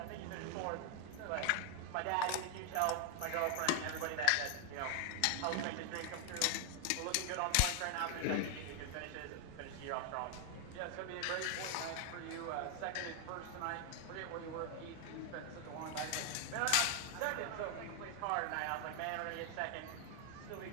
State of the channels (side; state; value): both; different; correlation 0.00